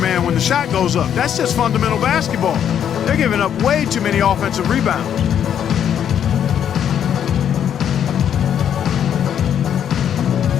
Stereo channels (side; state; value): right; quieter; 9.2 dB